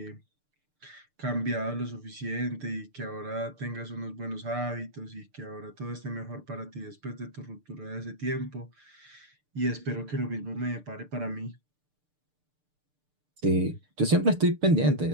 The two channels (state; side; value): late; left; 6.7 ms